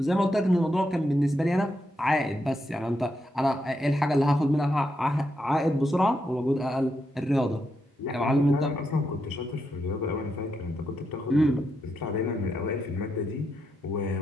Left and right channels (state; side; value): normal; both; correlation 0.82